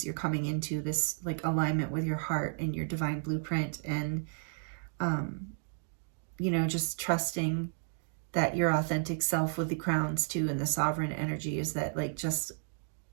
you're coming into this like alignment with your heart and your divine blueprint. And, you know, just trusting that your authentic self with the crowns too, and the sovereign energy is that like just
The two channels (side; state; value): left; silent; 56 dB below the other